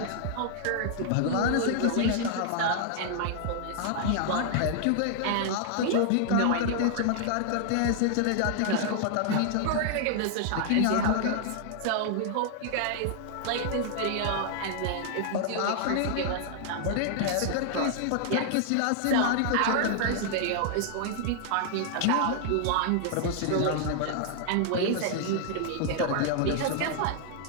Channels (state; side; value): different; both; correlation 0.00